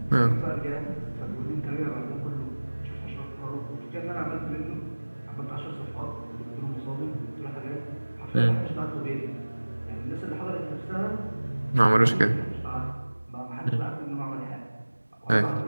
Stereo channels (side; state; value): both; inverted; correlation -1.00